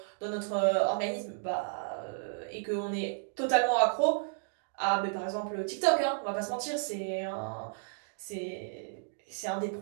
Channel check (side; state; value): left; silent; digital silence